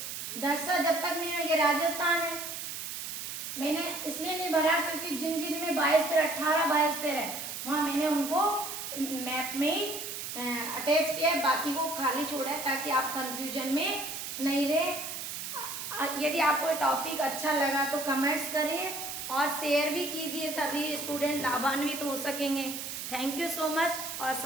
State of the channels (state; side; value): noise; right; hiss, 6 dB below the sound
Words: नक्शा जब तक नहीं, ये राजस्थान है। मैंने इसलिए नहीं भरा क्योंकि जिन जिन में बायोस्फीयर 18 बायोस्फीयर है वहाँ मैंने उनको मैप में ही अटैच किया है, बाकी को खाली छोड़ा है ताकि आप कंफ्यूजन में नहीं रहे। यदि आपको टॉपिक अच्छा लगा तो कमेंट्स करिए और शेयर भी कीजिए, सभी स्टूडेंट लाभान्वित हो सकेंगे। थैंक यू सो मच और